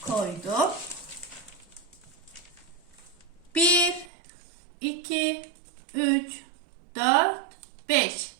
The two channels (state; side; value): drops out; left; at 4.0 s